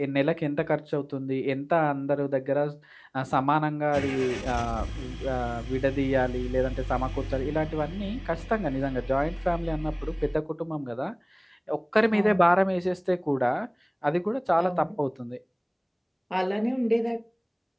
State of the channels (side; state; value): both; identical; correlation 1.00